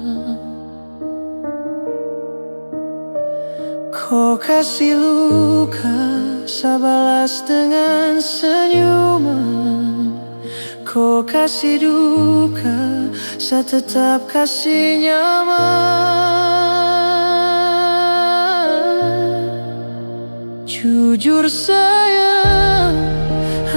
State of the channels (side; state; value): both; inverted; correlation -1.00